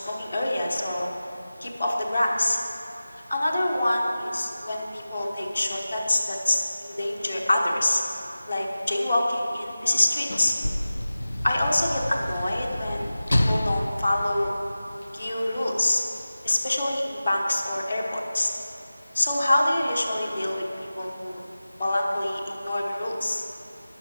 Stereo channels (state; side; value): inverted; both; correlation -0.96